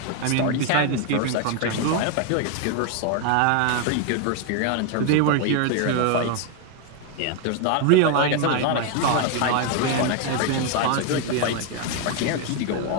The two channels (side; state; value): both; different; correlation 0.01